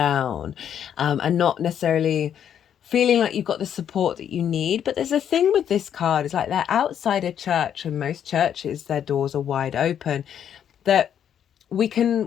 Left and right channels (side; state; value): right; quieter; 9.2 dB